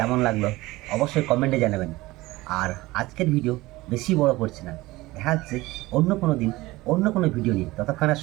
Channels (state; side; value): quieter; left; 19.5 dB